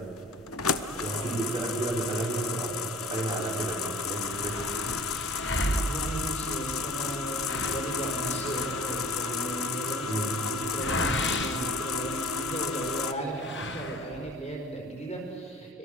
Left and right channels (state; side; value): normal; both; correlation 0.46